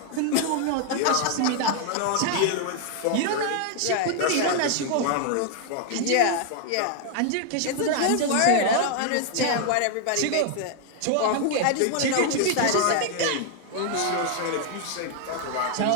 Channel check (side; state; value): both; different; correlation 0.00